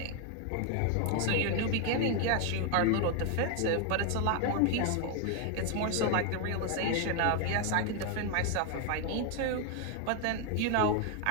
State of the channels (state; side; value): different; both; correlation 0.01